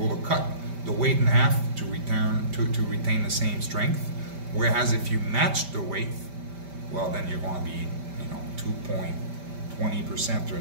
to cut the weight in half to retain the same strength. Whereas if you match the weight, well, then you're going to be, 2.20%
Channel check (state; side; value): late; left; 5.1 ms